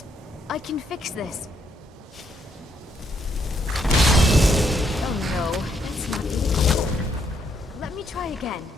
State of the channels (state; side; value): normal; both; correlation 0.74